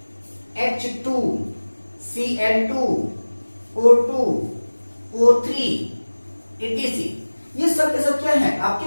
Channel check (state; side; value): inverted; both; correlation -1.00